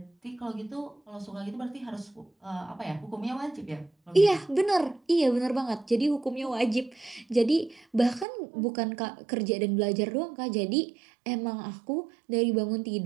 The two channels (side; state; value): left; drops out; at 8.2 s